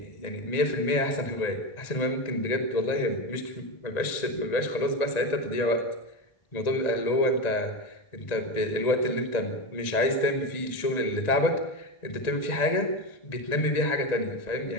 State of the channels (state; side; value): late; right; 1.9 ms